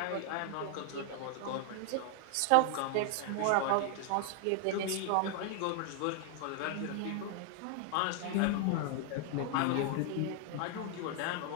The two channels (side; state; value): both; different; correlation 0.00